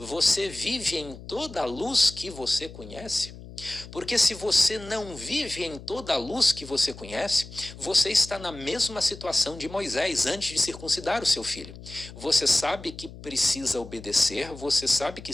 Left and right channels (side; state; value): left; noise; hum, 15 dB below the sound